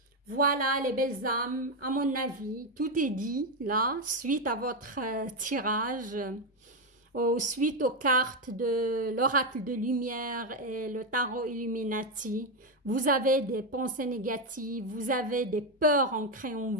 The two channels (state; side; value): normal; both; correlation 0.07